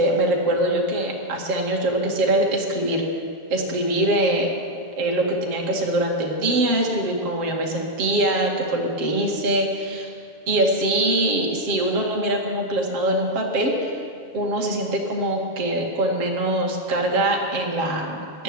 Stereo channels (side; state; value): left; late; 7.4 ms